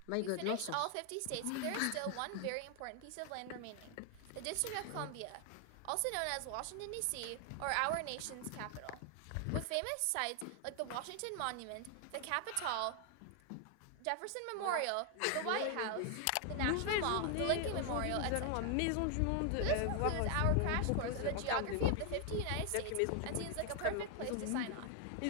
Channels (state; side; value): different; both; correlation 0.00